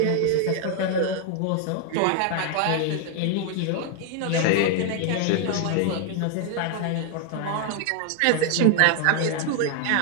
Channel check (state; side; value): different; both; correlation 0.00